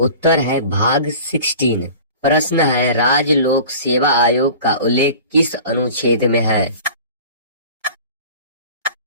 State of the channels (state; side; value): inverted; both; correlation -0.41